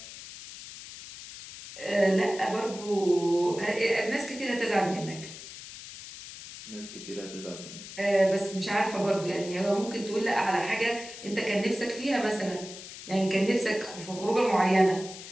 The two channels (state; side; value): noise; left; hiss, 13 dB below the sound